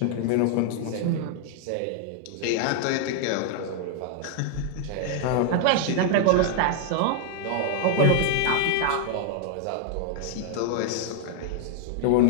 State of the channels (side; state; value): both; different; correlation 0.00